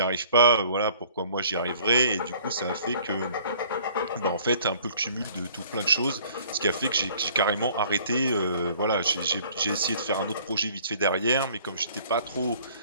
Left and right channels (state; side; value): inverted; both; correlation -0.55